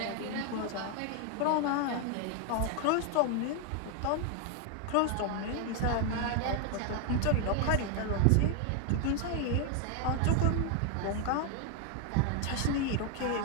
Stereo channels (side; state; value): both; different; correlation 0.00